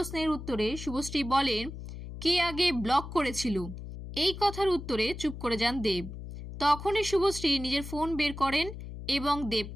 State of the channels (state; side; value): noise; left; hum, 10 dB below the sound